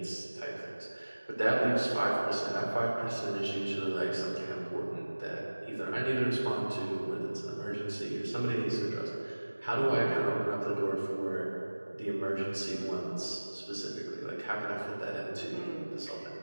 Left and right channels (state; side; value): inverted; both; correlation -1.00